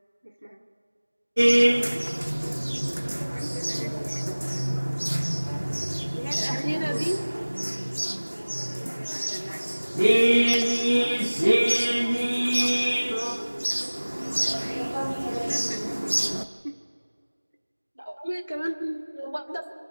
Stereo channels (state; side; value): inverted; both; correlation -1.00